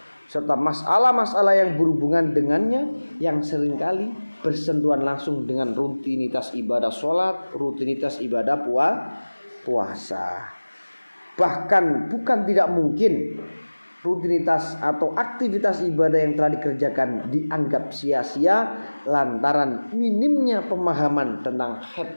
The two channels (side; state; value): both; inverted; correlation -1.00